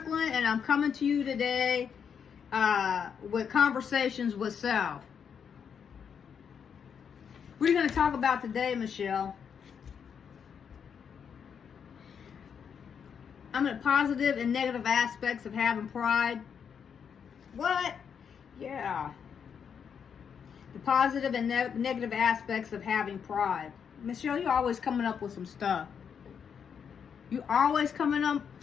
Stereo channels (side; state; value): right; quieter; 7.2 dB